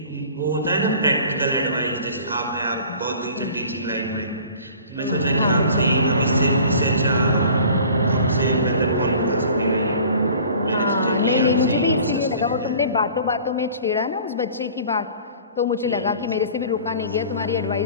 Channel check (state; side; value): inverted; both; correlation -0.46